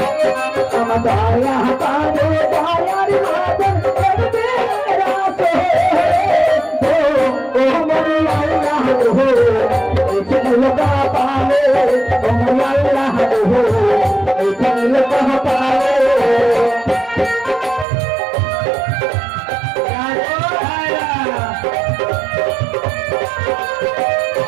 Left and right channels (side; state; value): left; drops out; at 17.9 s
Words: আমার দয়া পালে দয়ার মাদন করবে রাসে, ও মরি আল্লাহ গো, ছিল কাহা পালে, ও মরি আল্লাহ গো, ছিল কাহা পালে।